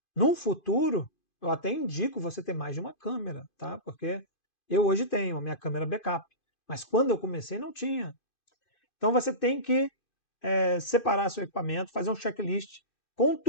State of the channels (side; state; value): right; late; 2.4 ms